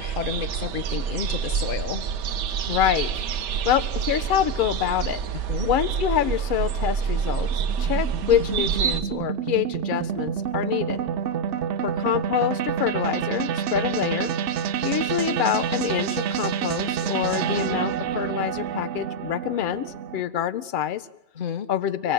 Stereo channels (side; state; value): left; late; 2.3 ms